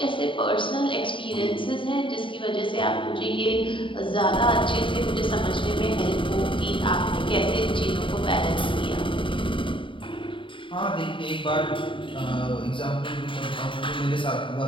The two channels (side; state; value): right; late; 0.25 ms